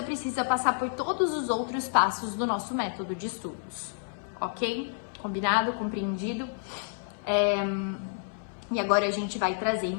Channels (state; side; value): silent; right; 58 dB below the other